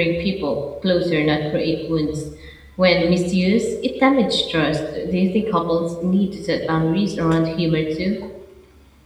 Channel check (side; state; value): both; identical; correlation 1.00